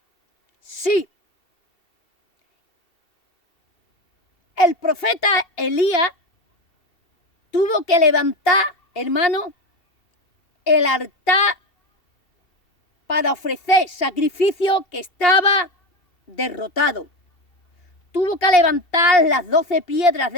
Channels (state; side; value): late; right; 2.8 ms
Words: Sí. El profeta Elías tuvo que levantar, hermano, el altar para ofrecer sacrificio que estaba derrotado. Tuvo que levantar las 12 piedras